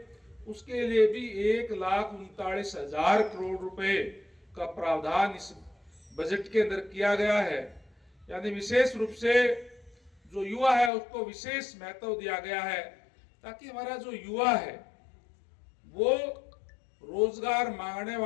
उसके लिए भी 1,39,000 करोड़ रुपए का प्रावधान इस बजट के अंदर किया गया है। यानी विशेष रूप से जो युवा है उसको विशेष महत्व दिया गया है ताकि हमारा जो युवा है वो रोजगार मांगने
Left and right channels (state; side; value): drops out; right; at 10.9 s